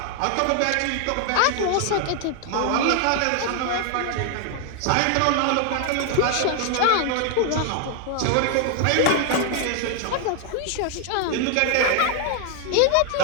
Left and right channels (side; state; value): both; different; correlation 0.00